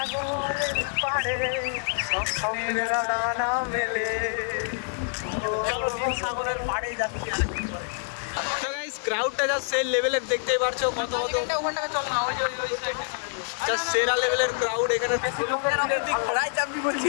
পাড়ে সব স্বপ্নের ডানা মেলে। সাগরের পাড়ে যাচ্ছি আর কি করে তো গাইস ক্রাউডটা যা সেই লেভেলের দেখতেই পারছো, কত কত ওখানটাকে চল না, ওই যে যা সেরা লেভেলের ক্রাউড এখানে। ঘোড়ায় চাপবি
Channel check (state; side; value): silent; right; digital silence